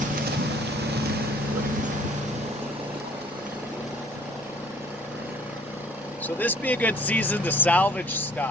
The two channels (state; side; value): normal; both; correlation 0.54